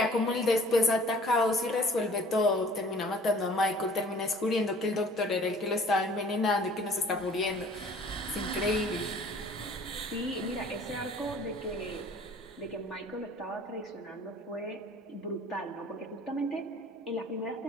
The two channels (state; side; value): normal; both; correlation 0.51